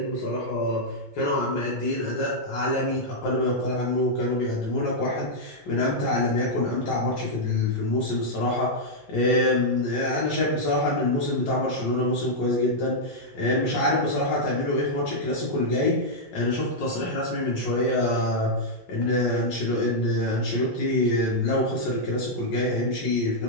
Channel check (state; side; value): normal; both; correlation -0.05